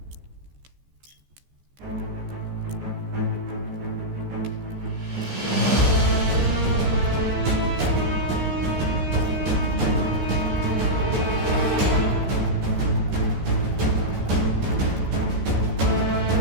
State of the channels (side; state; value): left; late; 14 ms